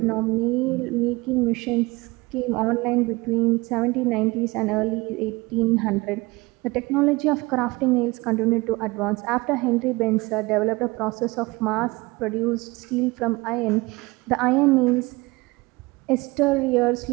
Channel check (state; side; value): quieter; left; 23.2 dB